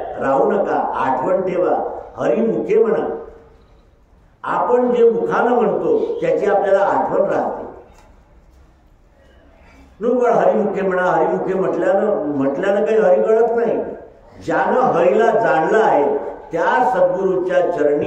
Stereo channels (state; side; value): identical; both; correlation 1.00